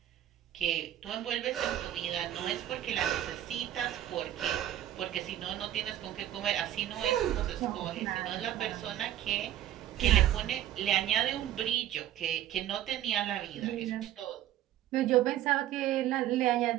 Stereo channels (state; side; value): quieter; left; 12.2 dB